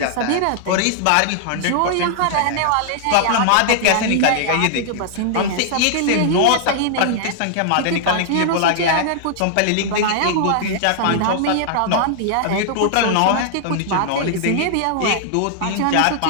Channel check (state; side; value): different; both; correlation -0.01